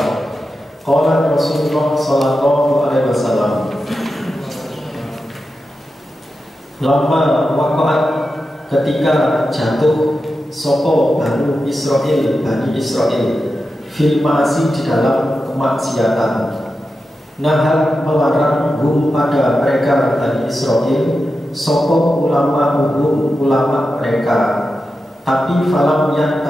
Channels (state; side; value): normal; both; correlation 0.90